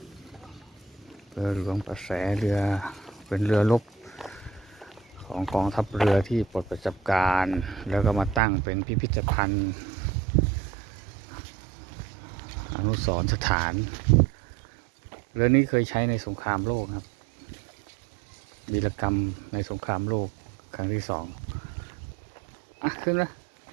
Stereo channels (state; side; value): drops out; left; at 8.4 s